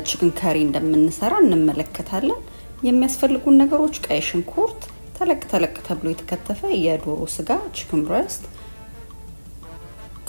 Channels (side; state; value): both; inverted; correlation -1.00